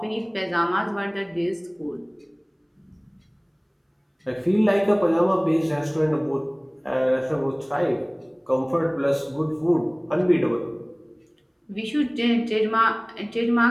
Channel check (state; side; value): identical; both; correlation 1.00